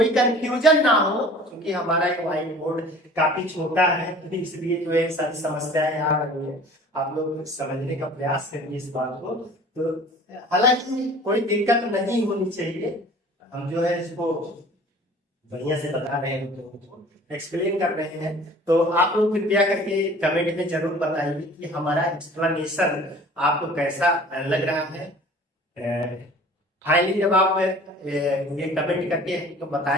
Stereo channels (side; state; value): both; normal; correlation 0.47